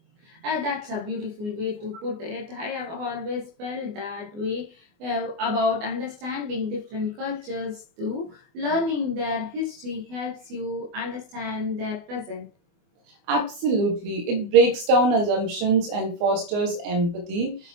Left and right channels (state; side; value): late; left; 24 ms